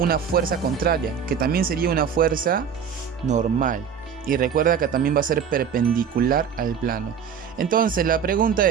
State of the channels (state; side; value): quieter; left; 7.4 dB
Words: fuerza contraria, que también sería una fuerza normal. Y recuerda que también va a ser perpendicular al plano. Entonces la pregunta